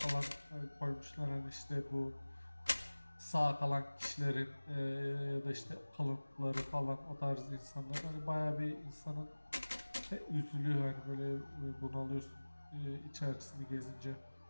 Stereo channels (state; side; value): inverted; both; correlation -1.00